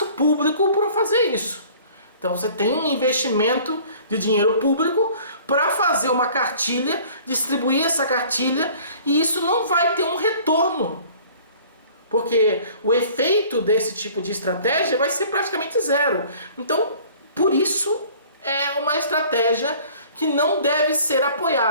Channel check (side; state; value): both; inverted; correlation -0.50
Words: público para fazer isso. Então você tem um investimento de dinheiro público para fazer uma cartilha, distribuir essa cartilha, e isso não vai ter um retorno. Porque o efeito desse tipo de estratégia vai ser praticamente zero. Então, por isso, é uma estratégia que não deve ser